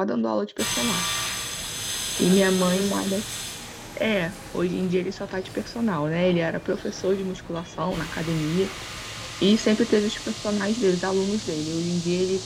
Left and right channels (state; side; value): identical; both; correlation 1.00